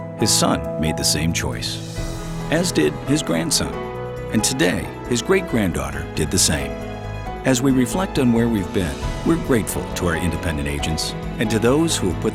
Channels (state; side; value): identical; both; correlation 1.00